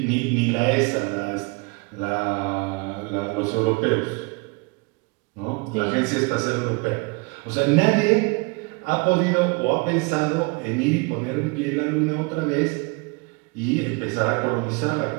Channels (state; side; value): quieter; left; 28.7 dB